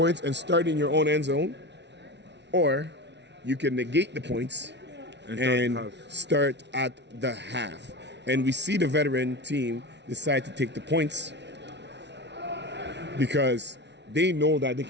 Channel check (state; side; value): late; left; 0.51 ms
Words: and start in your own end zone. Or you can negate the points and start at the half. And we see the veteran team decide to take the points because they know that they